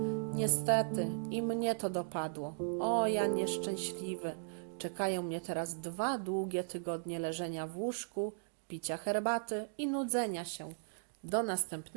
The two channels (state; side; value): silent; left; digital silence